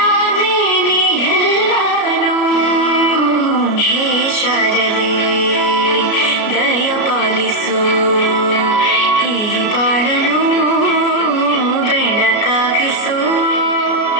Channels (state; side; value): late; right; 33 ms